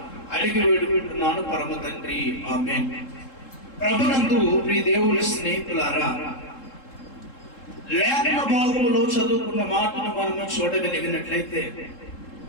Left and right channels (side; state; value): right; late; 3.7 ms